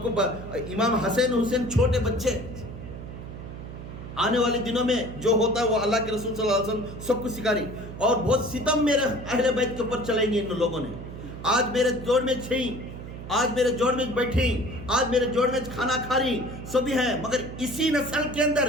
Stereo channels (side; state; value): right; noise; hum, 11 dB below the sound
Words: کو امام حسین چھوٹے بچے، آنے والے دنوں میں جو ہوتا ہے وہ اللہ کے رسول صلی اللہ علیہ وسلم سب کو سکھاری، اور بہت ستم میرے اہل بیت کے اوپر چلیں گے ان لوگوں نے. آج میرے جوڑ میں چھیں، آج میرے جوڑ میں بیٹھی، آج میرے جوڑ میں کھانا کھا رہی سبھی ہیں، مگر اسی نسل کے اندر